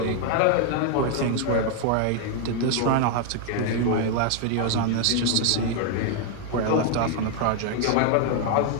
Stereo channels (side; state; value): both; different; correlation 0.00